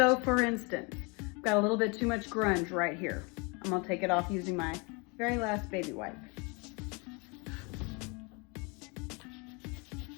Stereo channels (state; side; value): quieter; right; 30.2 dB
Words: for instance, I've got a little bit too much grunge right here. I'm gonna take it off using my very last baby wipe.